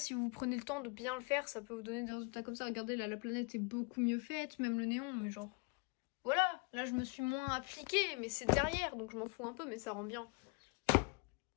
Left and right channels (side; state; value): right; quieter; 31.9 dB